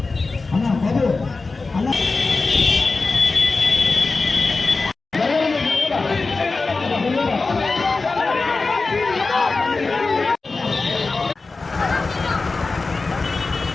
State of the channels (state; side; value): quieter; right; 3.8 dB